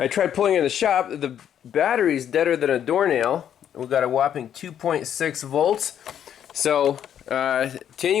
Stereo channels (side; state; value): right; quieter; 9.6 dB